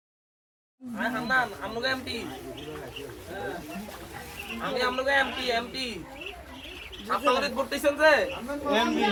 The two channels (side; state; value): both; identical; correlation 1.00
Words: হান্নান আমনুকে এমপি আমনুকে এমপি আপনারা করতেছেন যে এমপি